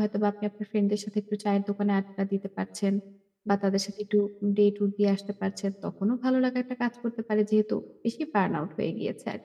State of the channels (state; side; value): identical; both; correlation 1.00